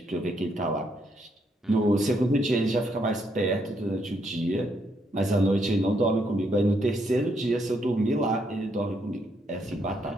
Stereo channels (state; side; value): normal; both; correlation 0.75